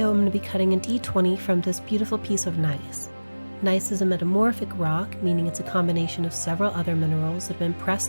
I'm going to be cutting a D20 from this beautiful piece of gneiss. Gneiss is a metamorphic rock, meaning it's a combination of several other minerals that have been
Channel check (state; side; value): inverted; both; correlation -1.00